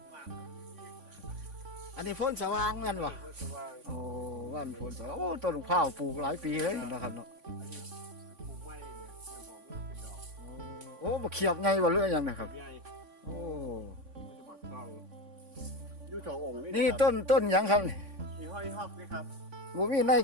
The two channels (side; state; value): left; late; 3.5 ms